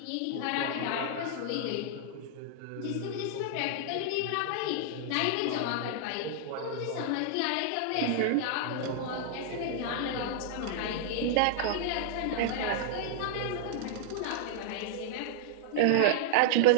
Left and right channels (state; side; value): different; both; correlation -0.01